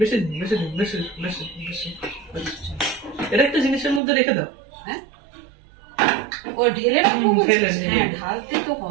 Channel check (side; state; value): left; drops out; at 4.0 s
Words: দিন বেশি দিন বেশি বেশি বেশি, এটা একটা জিনিসের মধ্যে রেখে দাও। হ্যাঁ, ও ঢেলে রাখবো। হ্যাঁ, ঢালতে তো